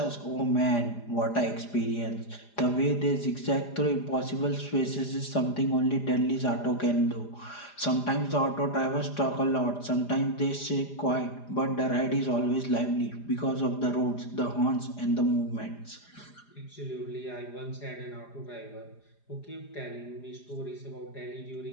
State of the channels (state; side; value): late; right; 4.9 ms